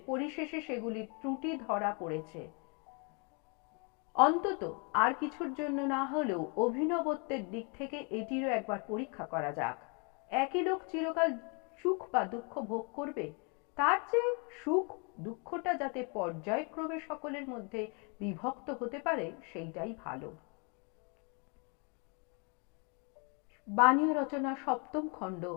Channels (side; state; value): right; quieter; 35.1 dB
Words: পরিশেষে সেগুলির ত্রুটি ধরা পড়েছে। অন্তত আর কিছুর জন্য না হলেও অভিনবত্বের দিক থেকে এটিরও একবার পরীক্ষা করা যাক। একই লোক চিরকাল সুখ বা দুঃখ ভোগ করবে, তার চেয়ে সুখ দুঃখটা যাতে পর্যায়ক্রমে সকলের মধ্যে বিভক্ত হতে পারে সেইটাই ভালো। বাণীয় রচনা সপ্তম খণ্ড,